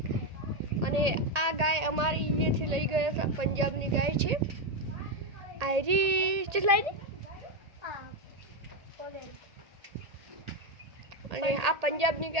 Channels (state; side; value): late; left; 1.8 ms